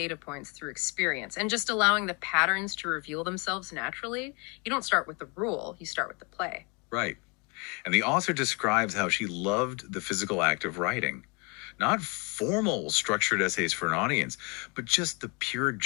points through experience and just allowing the patterns to reveal themselves naturally. You don't start with the rule, you start with the play. Right. And the author describes how she loved the physical act of writing. Not formal, structured essays for an audience, but just the pure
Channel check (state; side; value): quieter; right; 31.4 dB